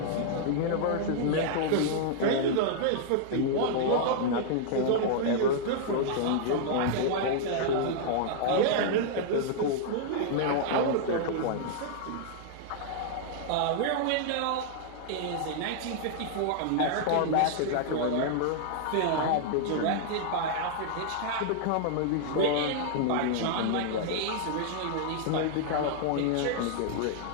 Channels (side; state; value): both; different; correlation -0.01